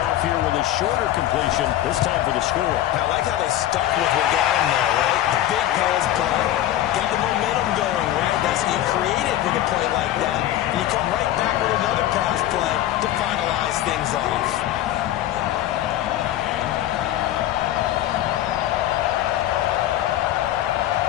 here with a shorter completion, this time for the score. I like how they stuck with what got him there, right? The big pass play, got the momentum going, right? That's what you created with a play like that. And you come right back with another pass play to finalize things off.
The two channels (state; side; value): quieter; right; 13.1 dB